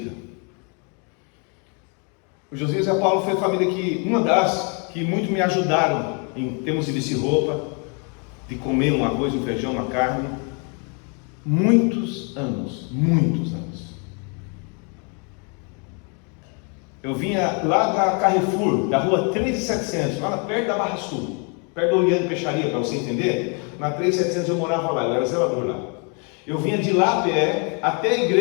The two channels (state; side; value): quieter; right; 36.4 dB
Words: O Josias e a Paula foi a família que, uma das que muito me ajudaram em termos de vestir roupa, de comer um arroz, um feijão, uma carne. Muitos anos. Eu vinha lá da Carrefour, da rua 3700, lá perto da Barra Sul, perto do Oriente Peixaria, para você entender. Na 3700 eu morava lá, eu era zelador lá. Eu vinha de lá a pé até a